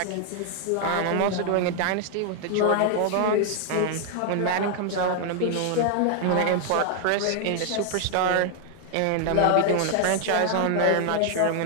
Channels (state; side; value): different; both; correlation 0.00